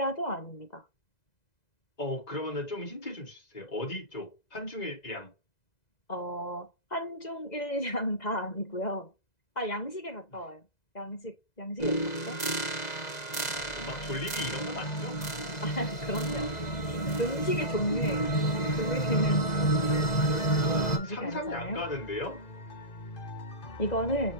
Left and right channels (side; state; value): right; late; 2.0 ms